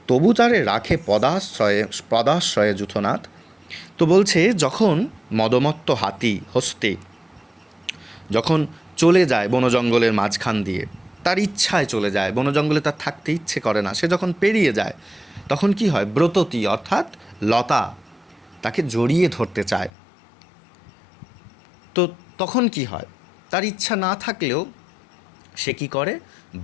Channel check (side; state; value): right; drops out; at 19.9 s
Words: তবু তারে রাখে পদাশ্রয়ে যূথনাথ। তো বলছে যখন মদমত্ত হাতি হস্তে যখন চলে যায় বনজঙ্গলের মাঝখান দিয়ে, তার ইচ্ছায় চলে যায়, বনজঙ্গলে তার থাকতে ইচ্ছে করে না, সে যখন পেরিয়ে যায় তখন কি হয়? ব্রততী অর্থাৎ লতা তাকে জড়িয়ে ধরতে চায়। তো তখন কি হয়? তার ইচ্ছা না থাকলেও সে কি করে?